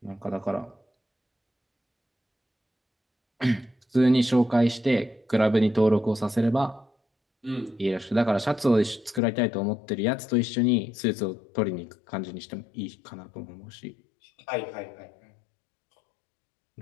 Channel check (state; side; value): drops out; right; at 9.2 s